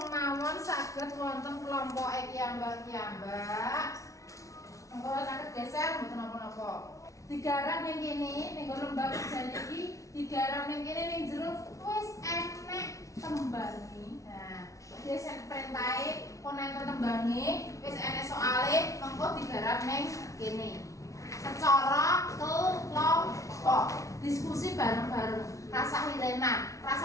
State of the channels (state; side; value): late; right; 0.16 ms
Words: mawon saged wonten kelompoke kiyambak-kiyambak. Monggo saged geser mboten napa-napa. Digarap ning kene ning lembaga kerja iki, digarap ning kene ning jero wis enek tembange. Nah, wis enek perintahe, pun enten tembange, wis enek soale, mengko digarap ning kene. Secara kelompok, diskusi bareng-bareng, rasa hirenan,